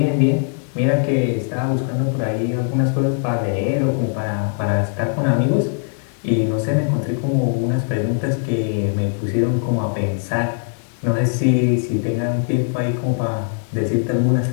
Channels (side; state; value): right; silent; 65 dB below the other